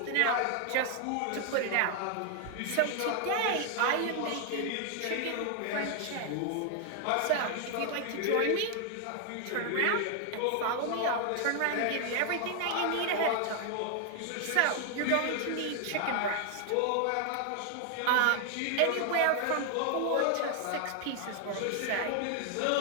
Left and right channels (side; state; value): both; different; correlation 0.00